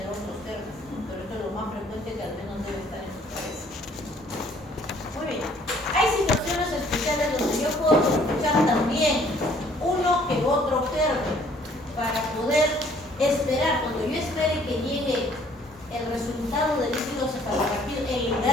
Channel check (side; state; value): both; normal; correlation 0.60